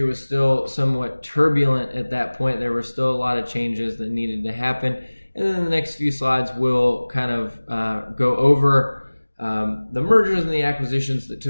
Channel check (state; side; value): inverted; both; correlation -1.00